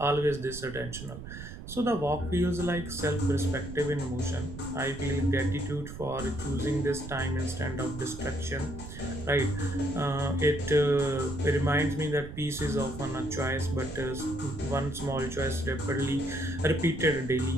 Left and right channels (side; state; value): right; noise; rumble, 11 dB below the sound